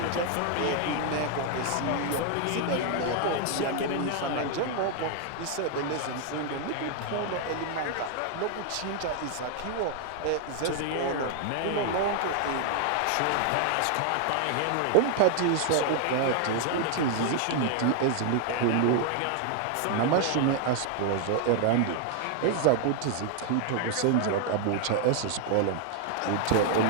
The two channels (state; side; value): different; both; correlation 0.00